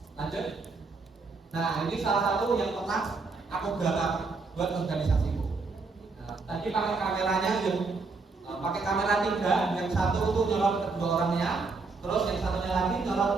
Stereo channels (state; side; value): quieter; left; 4.1 dB